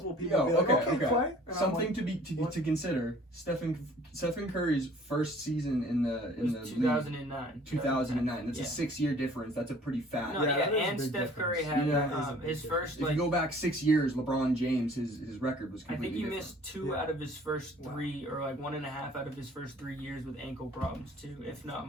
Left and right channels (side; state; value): both; normal; correlation 0.52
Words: people be like, okay. Clay. And something to consider. Stephen Curry's first season in the 2009. League, 2009. That's a 6-year difference. That's a pretty fat. And Steph Curry had his first. If you go back 6 years, LeBron James, his record was completely different. I think he missed 2 out of his first 3, or like 1.5 out of his first 3 years with ankle problems too, if not